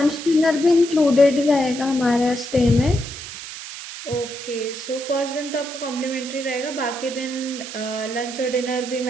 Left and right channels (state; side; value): noise; right; hiss, 11 dB below the sound